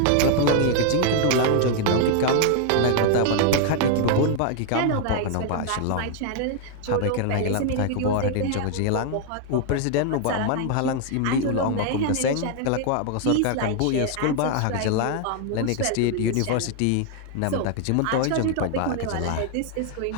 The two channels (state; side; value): different; both; correlation 0.00